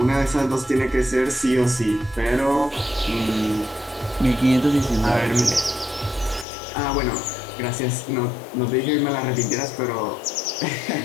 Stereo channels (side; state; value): right; drops out; at 6.5 s